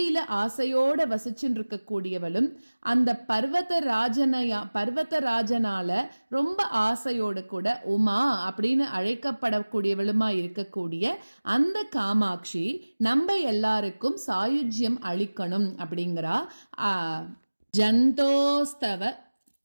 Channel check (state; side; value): inverted; both; correlation -1.00